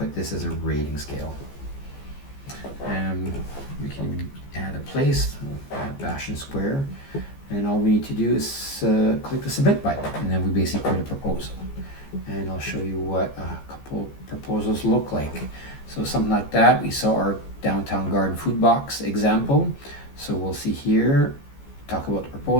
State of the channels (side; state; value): right; late; 14 ms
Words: this as a rating scale. And we can add a place, add Bastion Square, and all we need to do is click the submit button, and then we basically create a proposal. And I'll show you what a couple proposals look like. So something like that. We saw our downtown garden food box example. So we'll see here, talk about the